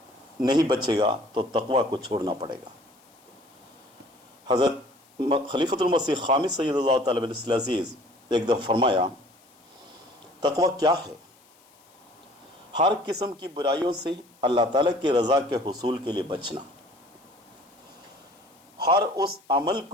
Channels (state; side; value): noise; left; hiss, 30 dB below the sound